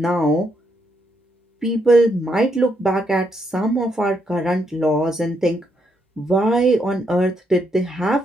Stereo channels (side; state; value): both; normal; correlation 0.77